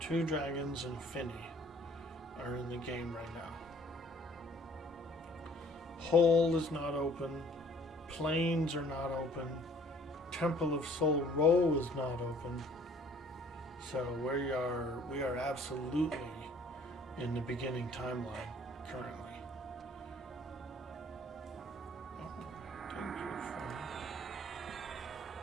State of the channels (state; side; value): normal; both; correlation 0.56